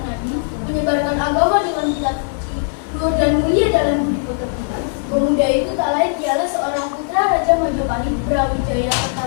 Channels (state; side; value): silent; right; 58 dB below the other